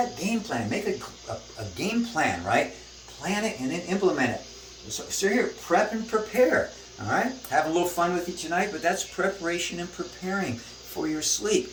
game plan. Make a game plan, right? Plan it and then implement it. So here, prep and prepare. All right? Have a little fun with you tonight, but that's preparation and preparing for your sleep.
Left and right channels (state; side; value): identical; both; correlation 1.00